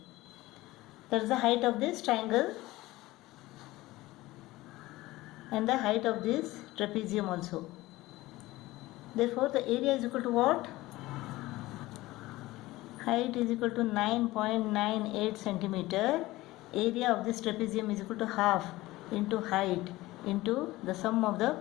That is the height of this triangle and the height of this trapezium also. Therefore, the area is equal to what? Height is equal to 9.98 centimeter. Area of this trapezium is equal to half into height into the sum of the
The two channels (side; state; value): right; quieter; 18.5 dB